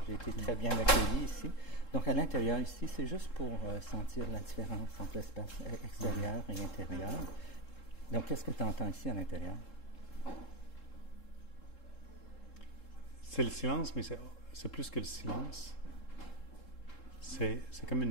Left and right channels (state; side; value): late; right; 3.7 ms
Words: j'ai été très bien accueilli ici. Donc à l'intérieur ici, c'est juste pour sentir la différence entre l'espace extérieur et intérieur. Donc qu'est-ce que tu entends ici à l'intérieur? C'est le silence, mais c'est plus que le silence. C'est